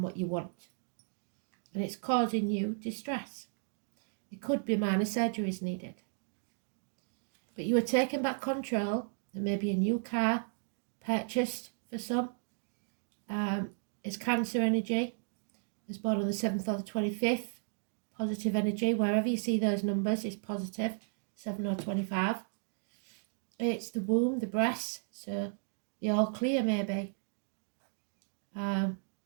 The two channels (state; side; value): silent; left; 55 dB below the other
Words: what you want. And it's causing you distress. It could be minor surgeries needed. But you are taking back control. There may be a new car purchased for some. It's Cancer energy. It's born on the 7th or the 25th. Positive energy. Wherever you see those numbers is positive. 7 or 25. It's the womb, the breasts. So you're all clear maybe. Or